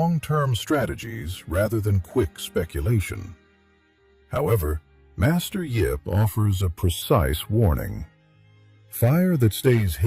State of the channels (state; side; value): identical; both; correlation 1.00